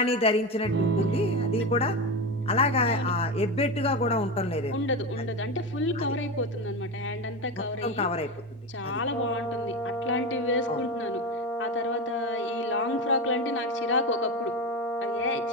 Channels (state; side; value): normal; both; correlation 0.20